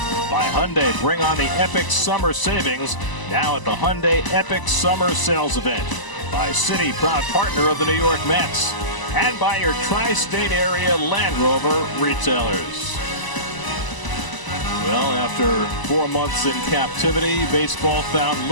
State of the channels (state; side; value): late; right; 1.0 ms